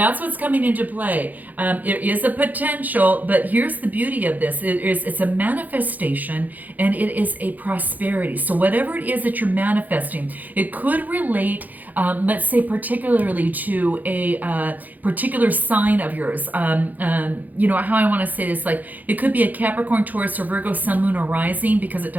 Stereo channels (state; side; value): late; left; 0.082 ms